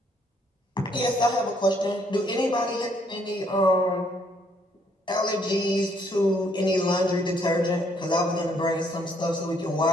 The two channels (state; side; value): normal; both; correlation 0.68